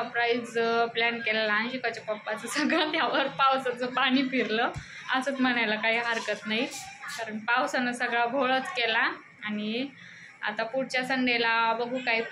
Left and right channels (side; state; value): both; identical; correlation 1.00